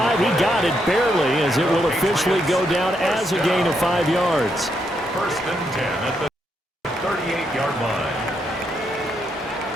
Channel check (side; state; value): both; normal; correlation 0.79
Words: He got it barely, as it will officially go down as a gain of 5 yards. First and 10 at the 38-yard line.